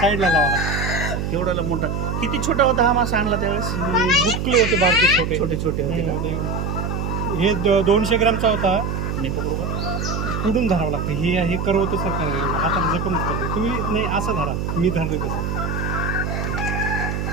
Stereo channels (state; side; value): noise; right; hum, 2 dB below the sound